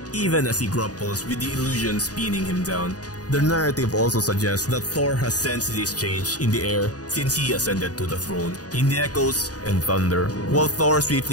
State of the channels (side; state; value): right; late; 0.68 ms